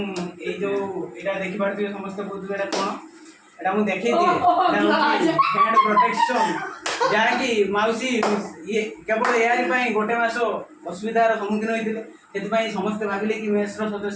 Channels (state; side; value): identical; both; correlation 1.00